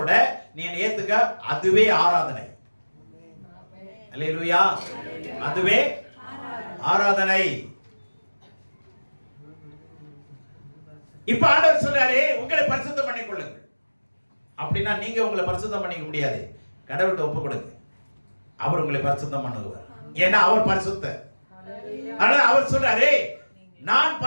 நீ என்னை ஏத்துக்க, அதுவே ஆராதனை. அல்லேலூயா, அதுவே ஆராதனை. இப்ப ஆண்டவர் சொல்றாரு, உங்களை பரிசுத்தம் பண்ணிக் கொள்ளுங்கள். அப்படின்னா நீங்க உங்களை பரிசுத்தம் பண்ணிக்க முடியாது. கடவுள்கிட்ட ஒப்பு கொடுங்க, அவர் உங்களை பரிசுத்தம் பண்ணுவார். ஏன்னா அவர் பரிசுத்தர். அதனால அவர் சொல்றாரு, நான்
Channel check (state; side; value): inverted; both; correlation -1.00